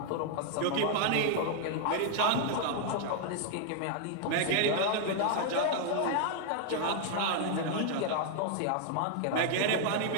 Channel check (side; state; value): both; different; correlation 0.00